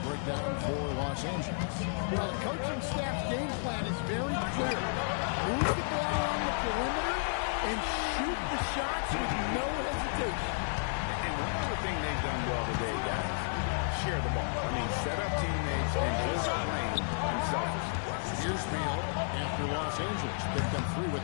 breakdown for Los Angeles. Well, the coaching staff's game plan is very clear. Move the ball on the perimeter and shoot the shots with no hesitation. And one other thing they've done well today, guys, share the ball. I mean, set up teammates and just play themselves. Here's Beal after Los Angeles picked up 3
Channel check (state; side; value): silent; right; digital silence